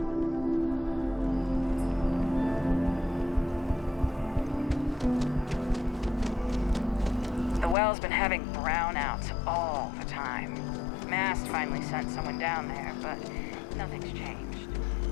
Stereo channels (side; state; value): right; drops out; at 7.8 s